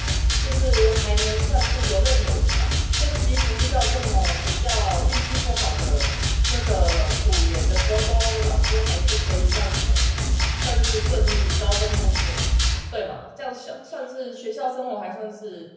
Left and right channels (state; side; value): identical; both; correlation 1.00